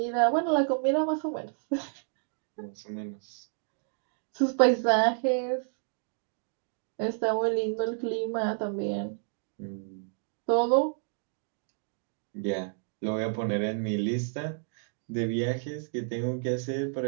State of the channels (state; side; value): silent; left; digital silence